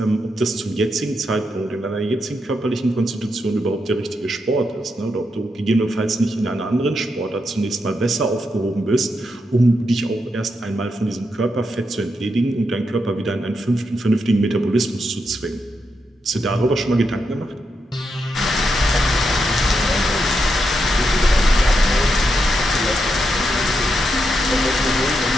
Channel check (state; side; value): normal; both; correlation 0.83